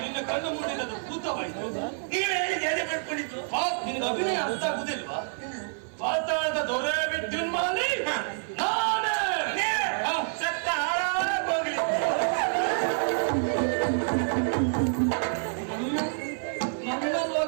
ನಿನ್ನ ಕಣ್ಣು ಮುಂದಿನದು ಭೂತವಾಯಿತು. ನೀವು ಹೇಳಿದ ಎದೆ ಪಡ್ಕೊಂಡಿತ್ತು. ನಿನ್ನ ಅಭಿನಯ ಅರ್ಥ ಆಗುದಿಲ್ವಾ? ಪಾತಾಳದ ದೊರೆ ವಿದ್ಯುನ್ಮಾಲಿ ನಾನೇ. ಸತ್ತ ಹಾಳಾಗೋಗ್ಲಿ. ನನ್ನ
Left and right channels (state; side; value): silent; left; 56 dB below the other